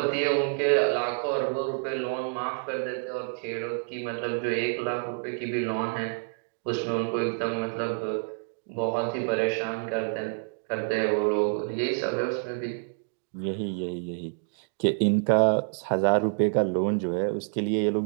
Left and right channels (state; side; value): silent; left; digital silence